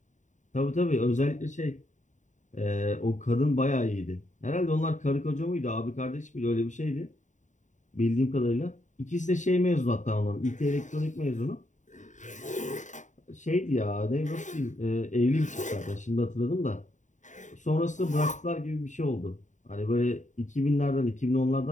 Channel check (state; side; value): late; right; 0.36 ms